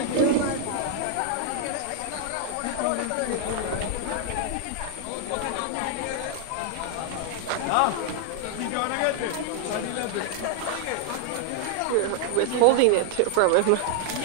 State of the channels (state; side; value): different; both; correlation 0.00